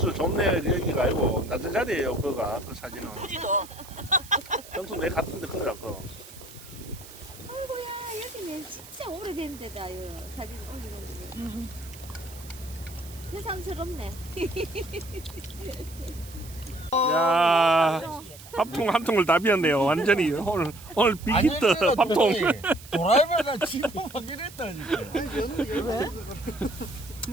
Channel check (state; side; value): noise; right; hiss, 18 dB below the sound